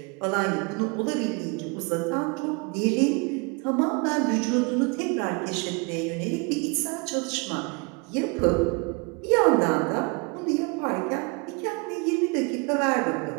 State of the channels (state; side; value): quieter; left; 31.1 dB